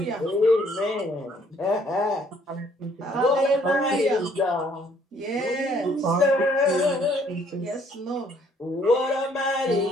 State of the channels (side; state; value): both; normal; correlation 0.63